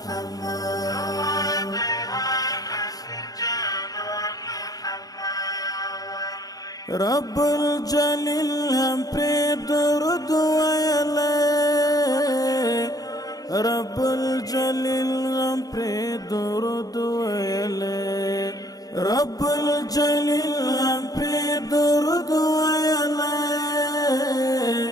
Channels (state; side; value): late; right; 0.18 ms